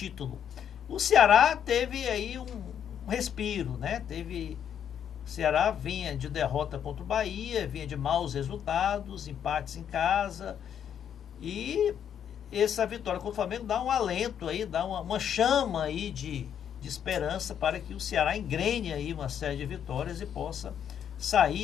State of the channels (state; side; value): quieter; right; 8.9 dB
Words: O Ceará teve aí um respiro, né? O Ceará vinha de derrota contra o Bahia, vinha de maus resultados, empates em casa, e essa vitória contra o Flamengo dá um alento aí, dá uma chama aí de esperança para que o Ceará engrene aí uma série de vitórias e possa